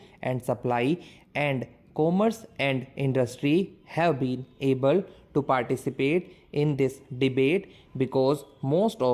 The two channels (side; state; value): both; identical; correlation 1.00